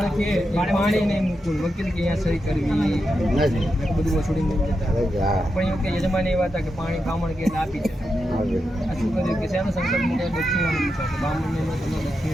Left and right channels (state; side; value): normal; both; correlation 0.87